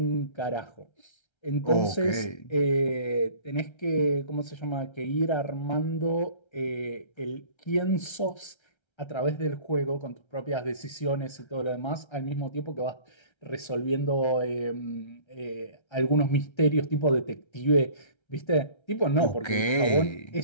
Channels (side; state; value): right; late; 1.3 ms